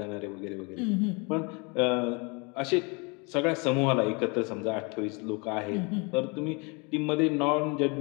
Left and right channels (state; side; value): quieter; right; 30.7 dB